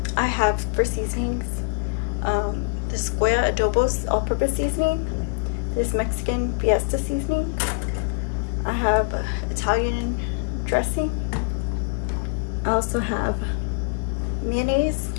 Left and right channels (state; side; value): quieter; right; 38.4 dB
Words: I have for seasonings, this Goya Adobo's all-purpose seasoning, this Mexican Fiesta seasoning, I have Italian dressing, I also have mayonnaise,